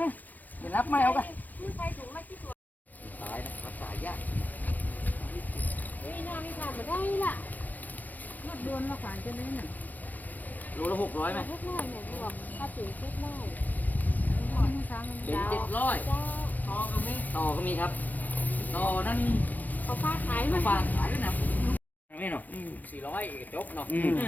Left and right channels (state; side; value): late; right; 0.082 ms